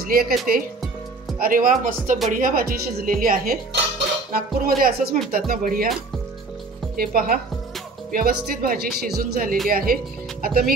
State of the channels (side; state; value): left; quieter; 3.6 dB